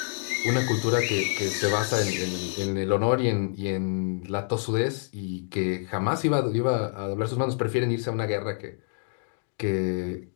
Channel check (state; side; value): silent; right; digital silence